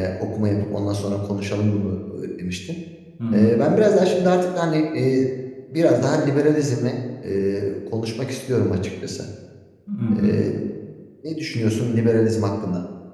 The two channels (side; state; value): both; identical; correlation 1.00